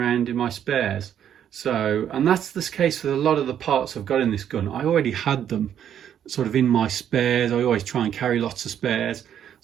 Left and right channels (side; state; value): left; quieter; 9.6 dB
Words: in my spares. So, and that's the case with a lot of the parts I've got in this gun. I already had them sort of in my spares. I always try and carry lots of spares.